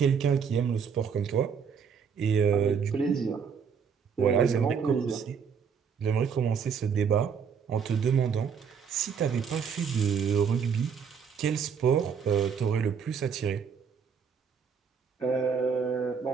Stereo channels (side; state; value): left; quieter; 6.7 dB